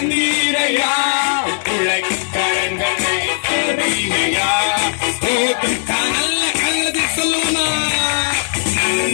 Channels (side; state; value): right; silent; digital silence